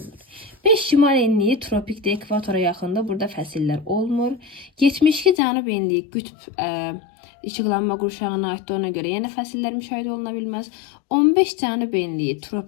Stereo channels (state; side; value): drops out; right; at 5.4 s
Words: 5 şimal enliyi tropikdə ekvatora yaxında burada fəsillər olmur. 72 cənub enliyi qütb işıqlanma qurşağına aiddir ona görə yenə fəsillər müşahidə oluna bilməz. 15 cənub enliyi